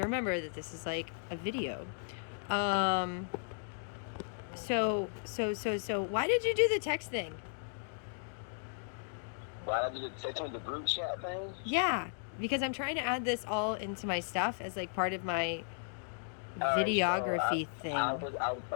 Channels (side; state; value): right; silent; digital silence